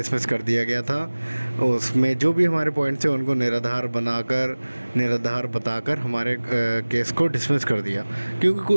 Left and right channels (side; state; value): both; inverted; correlation -1.00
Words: कर दिया गया था। उसमें जो भी हमारे पॉइंट्स थे उनको निराधार बताकर हमारे केस को डिसमिस कर दिया।